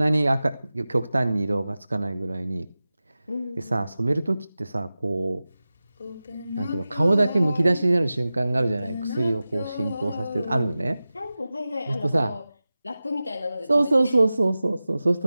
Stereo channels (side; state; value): both; inverted; correlation -0.95